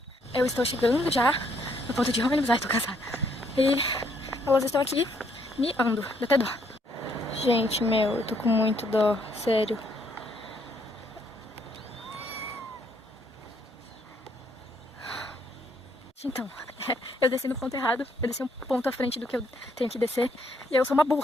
Eu estou chegando já no ponto de ônibus. Ai, tô cansada. E elas estão aqui miando. Dá até dó. Gente, meu, eu tô com muito dó. Sério. Então, eu desci no ponto errado. Eu desci um ponto à frente do que eu tenho que descer. E eu sou uma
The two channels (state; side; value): normal; both; correlation 0.70